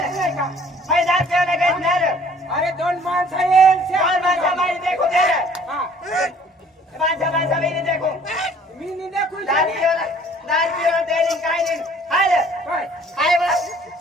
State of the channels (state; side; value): normal; both; correlation 0.55